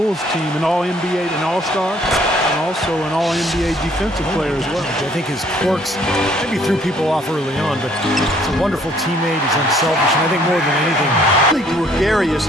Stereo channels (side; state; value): both; normal; correlation 0.62